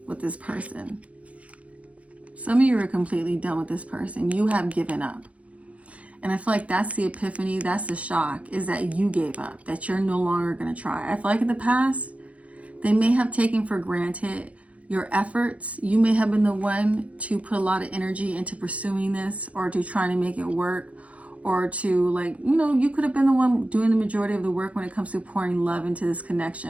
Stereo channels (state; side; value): late; left; 0.065 ms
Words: with this person. Some of you are completely done with this person. You have given up. And I feel like that's the epiphany, that's the shock, is that you gave up, that you're no longer going to try. I feel like in the past, they may have taken for granted your efforts. You may have been the one to put a lot of energy into pursuing this, or to trying to make it work, or to you could have been the one doing the majority of the work when it comes to pouring love into this